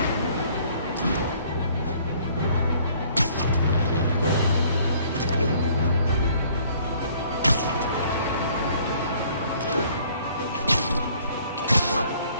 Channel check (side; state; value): both; inverted; correlation -0.59